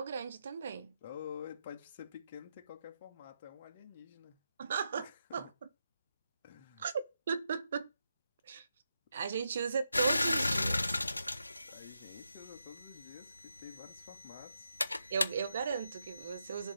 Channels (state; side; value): inverted; both; correlation -0.85